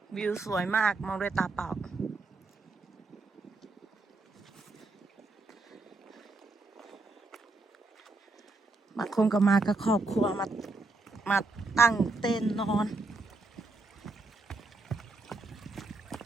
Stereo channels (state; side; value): quieter; left; 3.4 dB